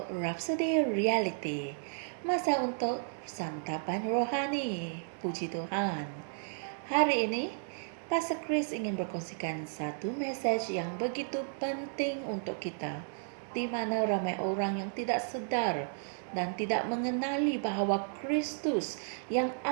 Rhapsody Reality. Masa untuk santapan rohani. Puji Tuhan. Hari ini, Pastor Chris ingin berkongsikan satu message yang begitu penting untuk kita, di mana ramai orang yang tidak sadar dan tidak mengenali bahawa Kristus yang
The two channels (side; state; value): left; silent; 56 dB below the other